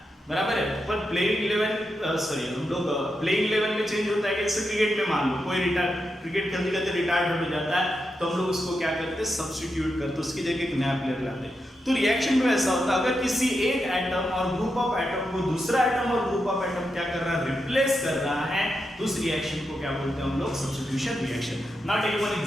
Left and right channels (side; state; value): both; normal; correlation 0.86